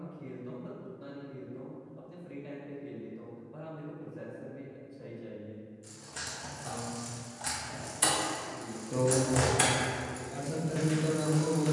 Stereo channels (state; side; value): identical; both; correlation 1.00